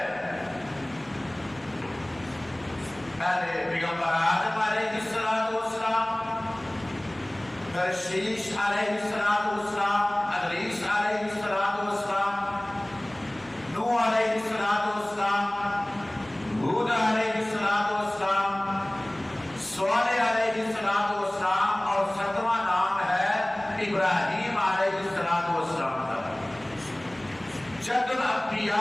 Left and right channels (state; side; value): noise; left; hum, 29 dB below the sound